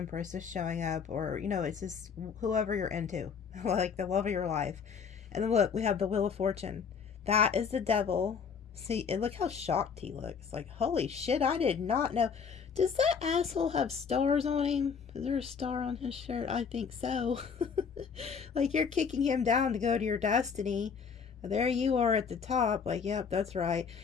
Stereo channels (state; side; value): quieter; right; 6.3 dB